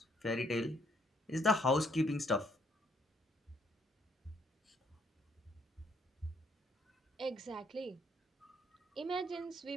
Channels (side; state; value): both; normal; correlation 0.68